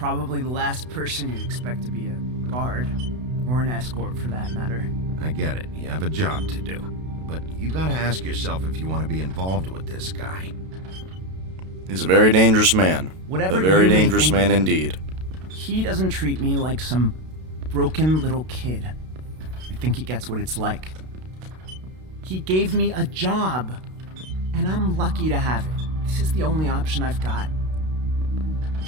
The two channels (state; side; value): late; left; 32 ms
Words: the last person you'd expect to be a guard, or an escort for that matter. I get it. You have a job to do. But you gotta ask yourself if you want to be involved with this guy. He's a very dangerous man. Whatever a very you may dangerous think man of him, indeed. He doesn't treat me like some broken little kid. I think he gets what it's like. He gave me a job, and I'm lucky to have it. This is the only option I've got.